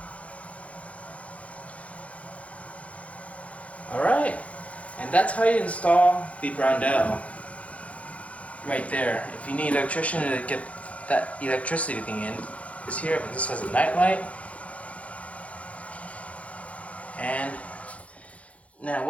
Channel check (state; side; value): late; right; 0.065 ms